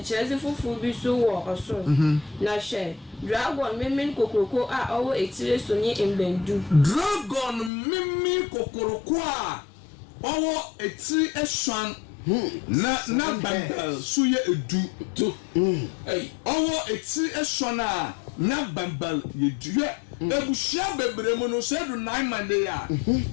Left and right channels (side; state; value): right; drops out; at 7.7 s